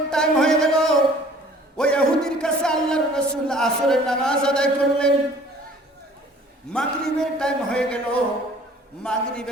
টাইম হয়ে গেল। ওই ইহুদির কাছে আল্লাহর রাসূল আসরের নামাজ আদায় করলেন। মাগরিবের টাইম হয়ে গেল।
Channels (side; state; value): both; normal; correlation 0.52